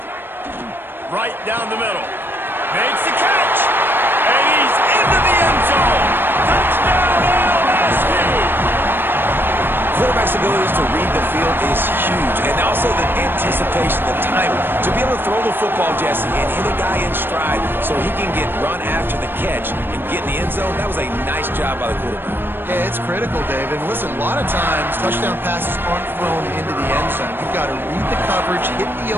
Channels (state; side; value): late; left; 0.099 ms